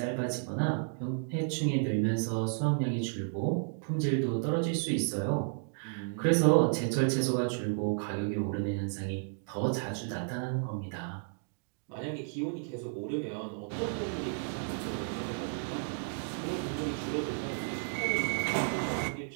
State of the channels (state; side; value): silent; left; digital silence